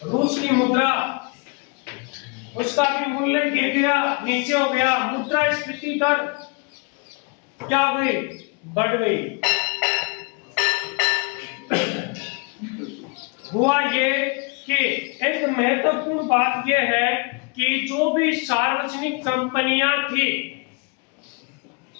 रूस की मुद्रा, उसका भी मूल्य गिर गया, नीचे हो गया। मुद्रास्फीति दर क्या हो गई, बढ़ गई। हुआ ये कि एक महत्वपूर्ण बात यह है कि जो भी सार्वजनिक कंपनियां थी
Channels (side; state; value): right; quieter; 32.0 dB